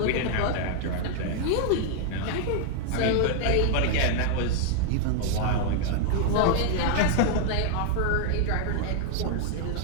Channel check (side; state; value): both; different; correlation -0.01